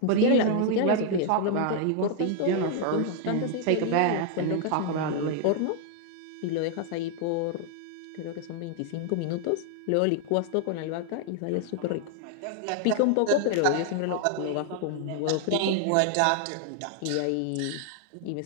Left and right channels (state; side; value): different; both; correlation 0.00